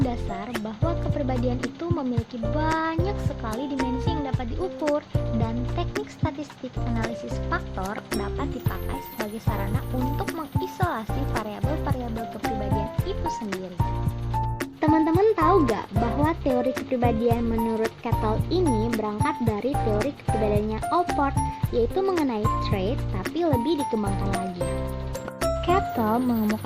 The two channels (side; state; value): both; identical; correlation 1.00